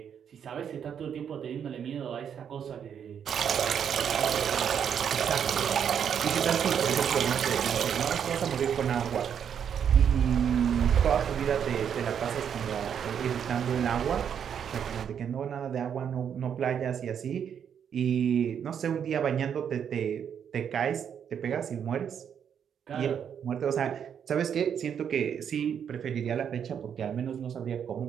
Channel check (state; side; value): quieter; left; 8.2 dB